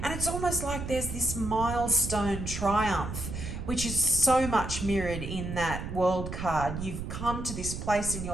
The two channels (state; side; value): noise; right; rumble, 6 dB below the sound